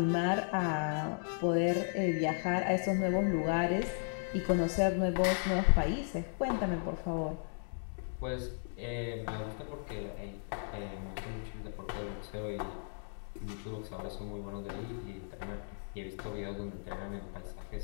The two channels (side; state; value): right; silent; digital silence